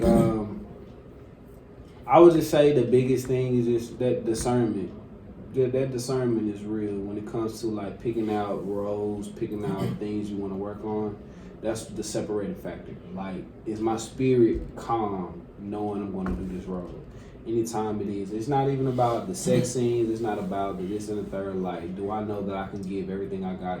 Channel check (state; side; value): identical; both; correlation 1.00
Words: I would just say the biggest thing is just that discernment. That discernment is real when it comes to like picking out roles, picking out things you want to work on. That's the separating factor. Like, is my spirit calm knowing I'm going to do this role? Anytime it is. It's not even about the sex scenes. It's not about the this and the third. Like, do I know that I can give everything I